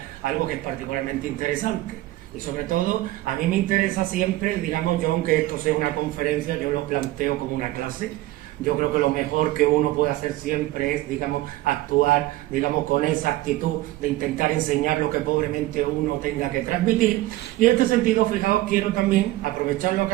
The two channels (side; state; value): left; quieter; 17.1 dB